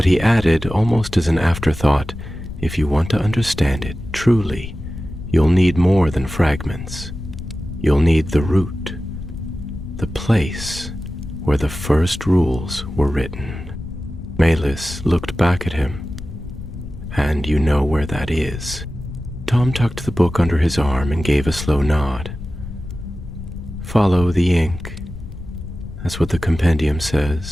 he added, almost as an afterthought, "If you want to understand it truly, you'll need more than fragments. You'll need the root, the place where the first rules were written." Melis looked back at him. "And you know where that is?" Tom tucked the book under his arm and gave a slow nod. "Follow the ink. That's what the Compendium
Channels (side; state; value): left; noise; rumble, 11 dB below the sound